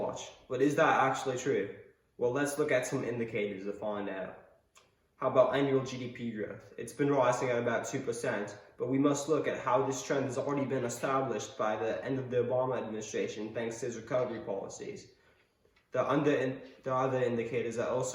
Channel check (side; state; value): both; identical; correlation 1.00